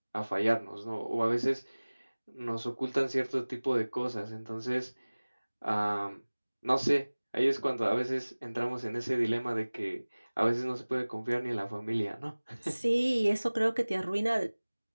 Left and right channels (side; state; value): both; inverted; correlation -1.00